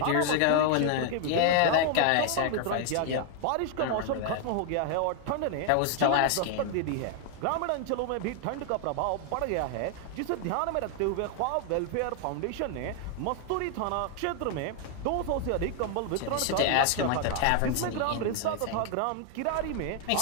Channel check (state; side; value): different; both; correlation 0.00